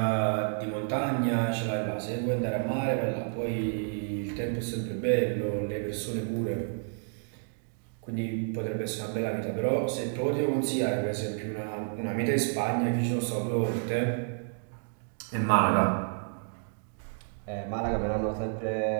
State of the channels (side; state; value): left; silent; 58 dB below the other